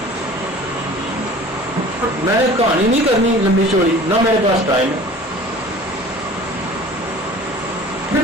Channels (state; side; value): normal; both; correlation 0.44